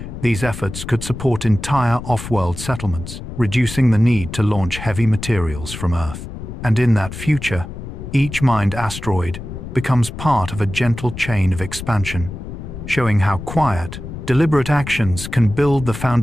these efforts could support entire off-world settlements, reducing the need to launch heavy materials from Earth. And in that future, each mined asteroid becomes part of a gentle chain of expansion, showing how quiet, deliberate actions can build the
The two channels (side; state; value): left; noise; rumble, 10 dB below the sound